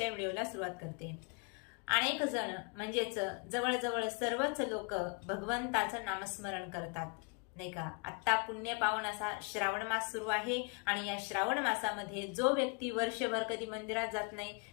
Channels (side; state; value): right; quieter; 34.7 dB